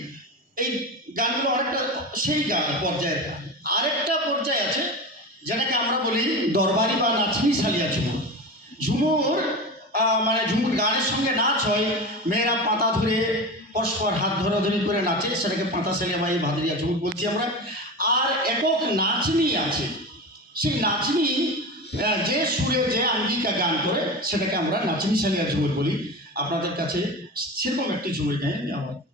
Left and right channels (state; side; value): normal; both; correlation 0.26